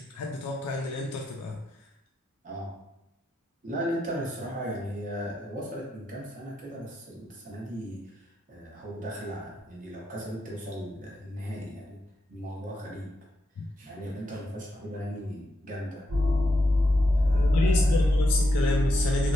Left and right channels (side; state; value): both; normal; correlation 0.83